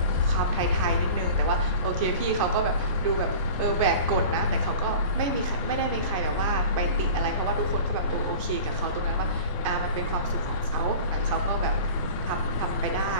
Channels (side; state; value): both; inverted; correlation -0.39